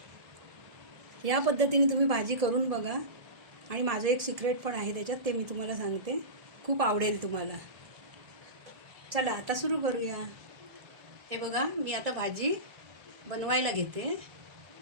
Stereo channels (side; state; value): left; late; 1.7 ms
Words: या पद्धतीने तुम्ही भाजी करून बघा. आणि माझं एक सिक्रेट पण आहे त्याच्यात, ते मी तुम्हाला सांगते. खूप आवडेल तुम्हाला. चला आता सुरू करूया. हे बघा, मी आता भाजी बनवायला घेते.